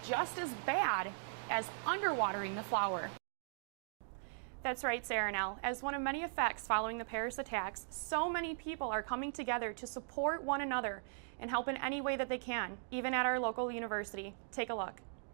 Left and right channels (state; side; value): silent; left; digital silence